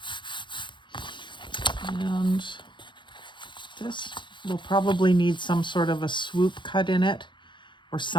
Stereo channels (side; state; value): right; late; 0.23 ms